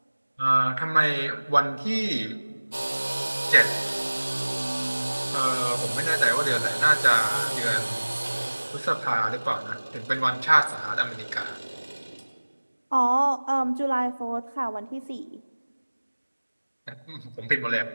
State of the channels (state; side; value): inverted; both; correlation -1.00